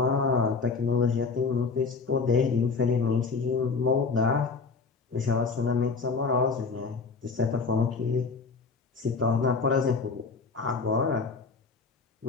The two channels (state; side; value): quieter; right; 4.6 dB